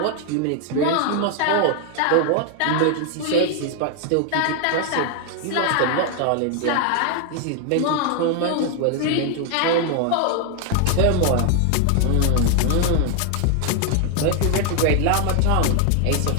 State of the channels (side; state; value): both; different; correlation 0.00